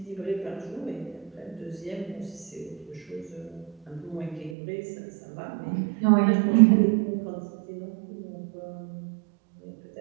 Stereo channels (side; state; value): left; drops out; at 4.5 s